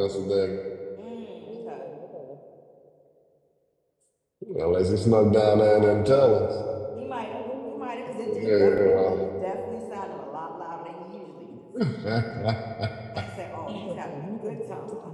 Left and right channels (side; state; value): both; identical; correlation 1.00